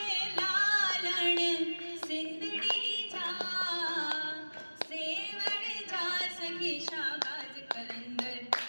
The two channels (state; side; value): inverted; both; correlation -1.00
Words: लालण सिंदड़ी जा सेवण जा सखी शाबाज कलंदर